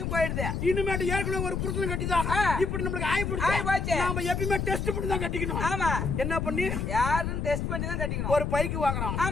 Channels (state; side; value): noise; left; rumble, 1 dB below the sound